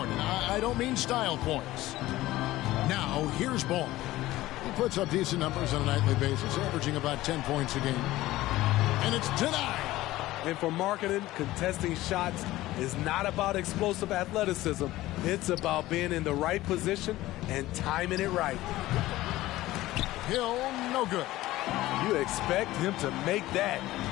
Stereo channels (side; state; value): right; quieter; 16.8 dB